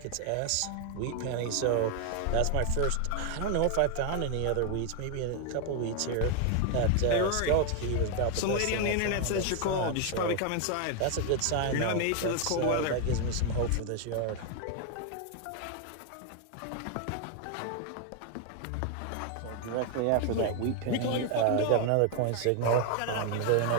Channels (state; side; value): different; both; correlation 0.01